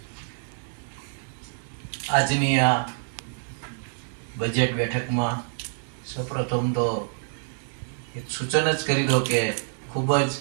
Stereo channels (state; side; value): silent; left; digital silence